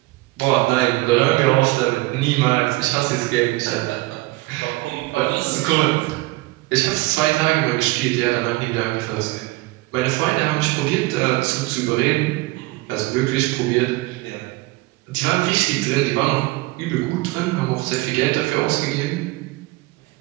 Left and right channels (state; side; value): quieter; left; 21.3 dB